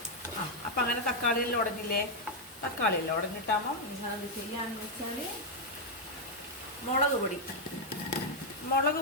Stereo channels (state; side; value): normal; both; correlation -0.01